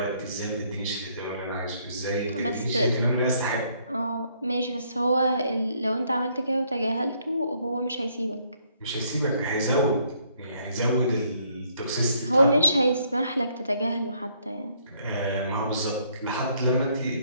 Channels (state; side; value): inverted; both; correlation -0.68